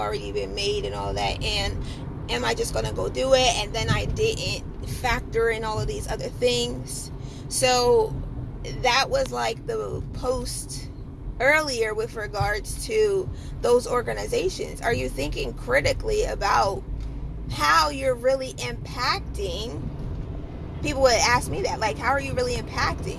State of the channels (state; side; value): identical; both; correlation 1.00